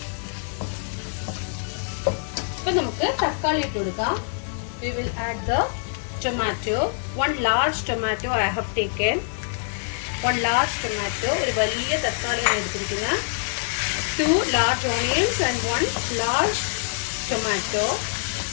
ഇപ്പം നമുക്ക് തക്കാളി ഇട്ട് കൊടുക്കാം. We will add the tomato. 1 large tomato I have taken. 1 large tomato. ഒരു വലിയ തക്കാളിയാണ് എടുത്തിരിക്കുന്നത്. 2 large onions and 1 large tomato.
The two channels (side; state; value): right; silent; 62 dB below the other